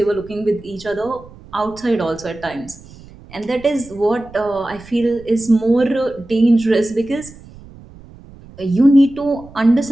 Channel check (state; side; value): noise; right; rumble, 20 dB below the sound